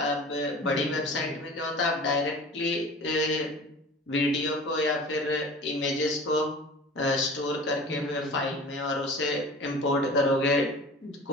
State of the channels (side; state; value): both; normal; correlation 0.40